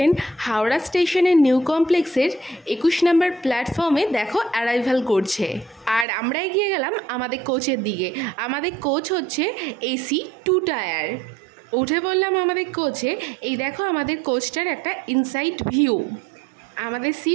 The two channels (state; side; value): drops out; left; at 6.1 s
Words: হাওড়া স্টেশনের নিউ কমপ্লেক্সের 21 নম্বর প্ল্যাটফর্মে দেখো অ্যারাইভাল করছে, আর আমরা এগিয়ে গেলাম আমাদের কোচের দিকে। আমাদের কোচ হচ্ছে এসি 2 টায়ার। উঠে বললাম আমাদের কোচে। এই দেখো আমাদের কোচটার একটা ইনসাইড ভিউ। আমাদের